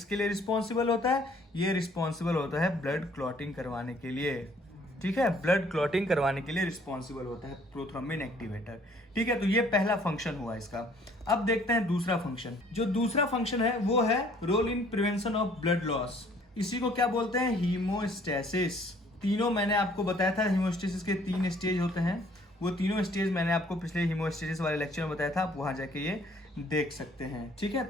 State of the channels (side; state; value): both; normal; correlation 0.59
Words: लिए रिस्पॉन्सिबल होता है? ये रिस्पॉन्सिबल होता है ब्लड क्लॉटिंग करवाने के लिए, ठीक है। ब्लड क्लॉटिंग करवाने के लिए रिस्पॉन्सिबल होता है प्रोथ्रोम्बिन एक्टिवेटर, ठीक है। तो ये पहला फंक्शन हुआ इसका। अब देखते हैं दूसरा फंक्शन। जो दूसरा फंक्शन है वो है role in prevention of blood loss. इसी को क्या बोलते हैं? हीमोस्टेसिस। तीनों मैंने आपको बताया था, हीमोस्टेसिस के 3 स्टेज होते हैं। वो तीनों स्टेज मैंने आपको पिछले हीमोस्टेसिस वाले लेक्चर में बताया था, आप वहां जाके ये देख सकते हैं, ठीक है।